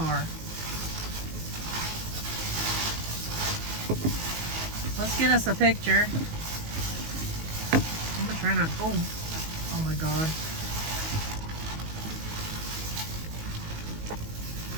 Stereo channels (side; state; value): left; late; 19 ms